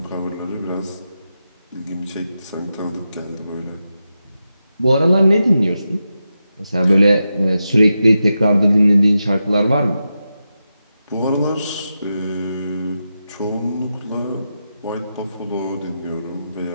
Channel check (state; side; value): inverted; both; correlation -0.89